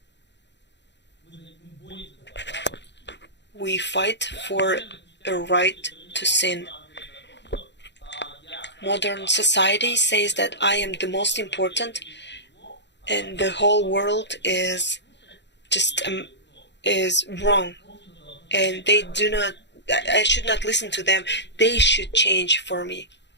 We fight for a right to sin. Modern society says that I am the most important, and the whole world is just is wrong, and they do not. I should not listen to them. They should change for me.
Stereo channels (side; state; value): right; late; 0.51 ms